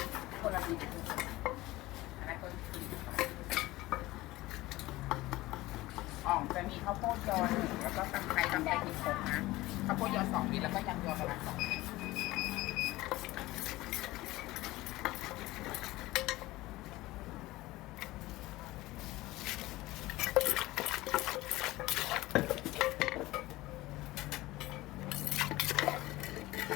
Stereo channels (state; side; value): quieter; right; 18.6 dB